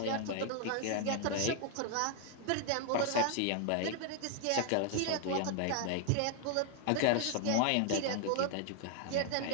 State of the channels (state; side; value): different; both; correlation 0.00